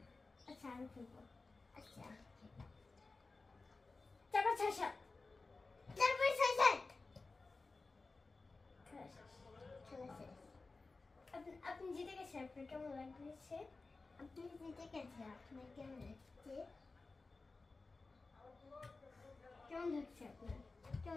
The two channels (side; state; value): right; quieter; 3.7 dB